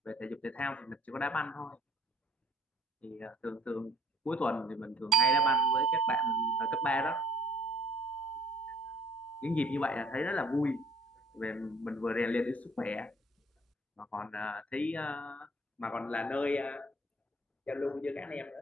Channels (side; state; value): both; normal; correlation 0.58